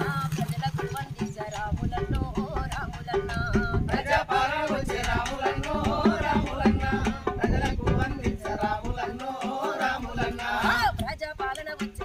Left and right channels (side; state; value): both; identical; correlation 1.00